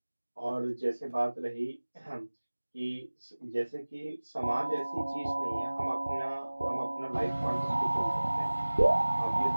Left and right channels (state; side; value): inverted; both; correlation -1.00